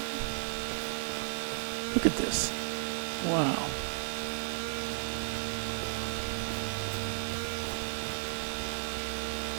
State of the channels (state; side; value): silent; left; digital silence